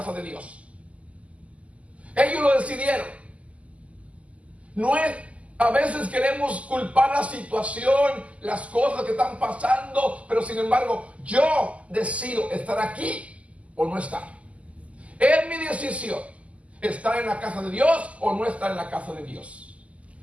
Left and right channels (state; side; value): late; left; 0.066 ms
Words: de Dios. Ellos lo decidieron. No es, a veces queremos culpar la situación, las cosas que están pasando, pero sin embargo, yo decido estar aquí o no estar. Es mi decisión, estar en la casa de Dios o no estar en la casa de Dios.